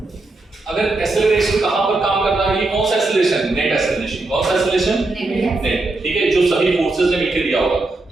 अगर एक्सेलरेशन कहां पर काम कर रहा है? ये कौन सा एक्सेलरेशन? Net acceleration. कौन सा एक्सेलरेशन? नेट, ठीक है, जो सभी फोर्सेस ने मिलकर दिया होगा।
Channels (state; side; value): quieter; left; 3.1 dB